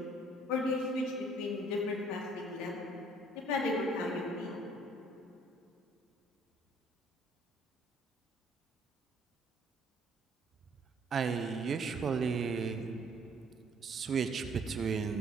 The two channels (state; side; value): normal; both; correlation 0.60